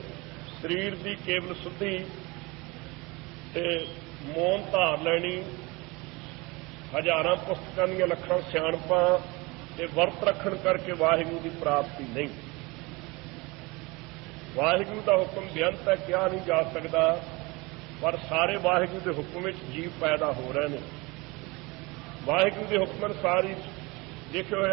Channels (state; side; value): quieter; left; 24.8 dB